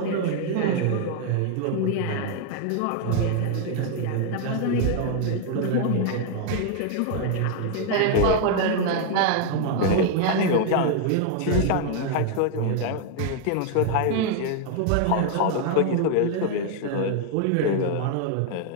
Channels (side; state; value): both; different; correlation 0.00